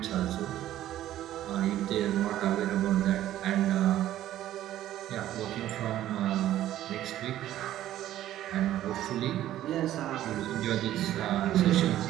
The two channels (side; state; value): left; quieter; 13.1 dB